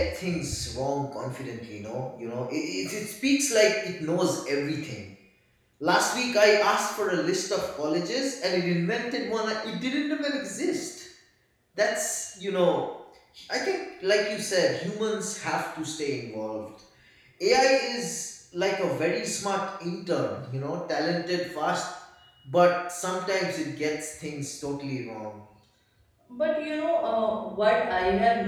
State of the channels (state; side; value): identical; both; correlation 1.00